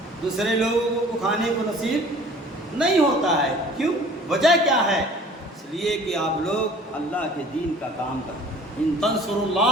دوسرے لوگوں کو کھانے کو نصیب نہیں ہوتا ہے. کیوں؟ وجہ کیا ہے؟ اس لیے کہ آپ لوگ اللہ کے دین کا کام کریں. ان تنصروا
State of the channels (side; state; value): both; normal; correlation 0.49